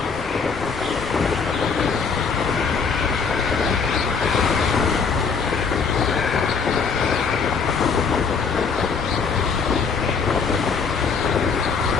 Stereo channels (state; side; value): quieter; right; 5.5 dB